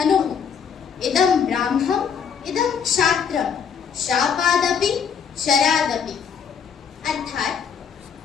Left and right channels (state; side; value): quieter; right; 7.1 dB